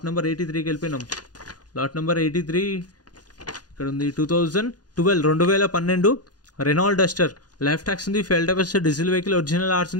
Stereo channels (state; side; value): late; right; 0.69 ms